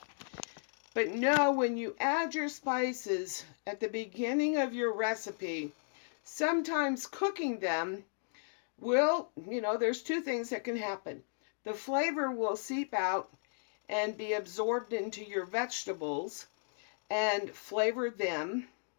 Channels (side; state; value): right; silent; digital silence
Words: But know, when you add your spices at the beginning of your recipe, sometimes cooking them will, there's 2 things that can happen. The flavor will seep out and be absorbed into your vegetables and flavor them,